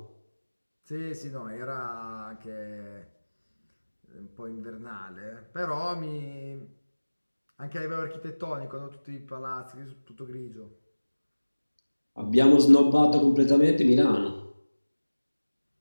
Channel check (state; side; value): inverted; both; correlation -1.00